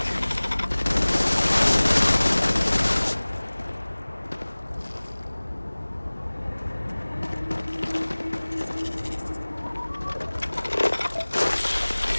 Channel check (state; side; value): inverted; both; correlation -1.00